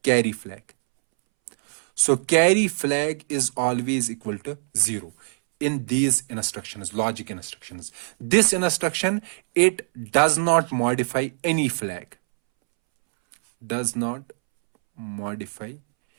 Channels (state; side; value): silent; left; 63 dB below the other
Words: carry flag. So carry flag is always equal to 0 in these instructions, logic instructions. This instruction, it does not modify any flag, does not modify